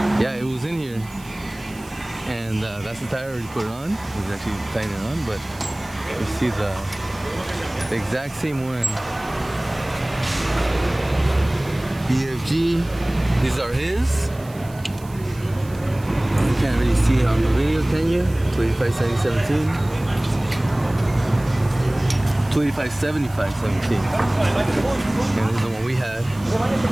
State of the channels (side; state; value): right; noise; hiss, 22 dB below the sound